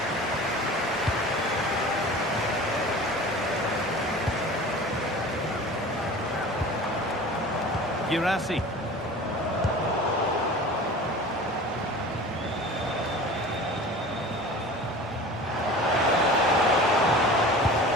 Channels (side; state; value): both; normal; correlation 0.39